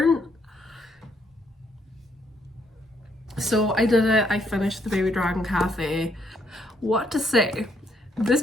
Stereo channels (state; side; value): normal; both; correlation 0.72